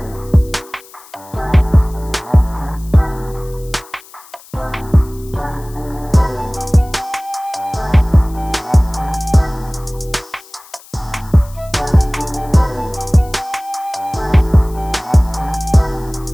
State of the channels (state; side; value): noise; left; hiss, 22 dB below the sound